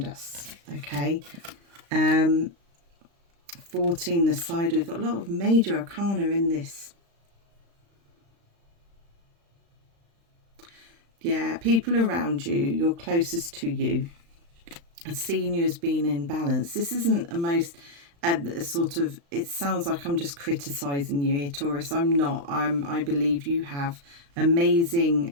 us. Okay. 14, the side, we've got a lot of major arcana in this. Yeah, people around you, you're closest to you, are seeing you as being in balance. This isn't a most sort of, it sounds like I'm just criticizing you here, Taurus. I'm not. I believe you have amazing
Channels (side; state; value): left; late; 35 ms